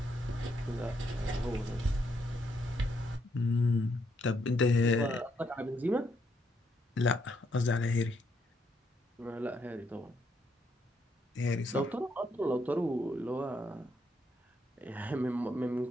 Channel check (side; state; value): both; normal; correlation 0.75